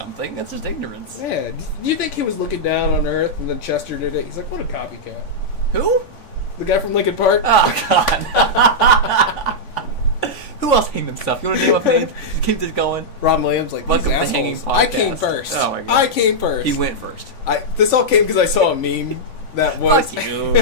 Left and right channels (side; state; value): right; late; 3.5 ms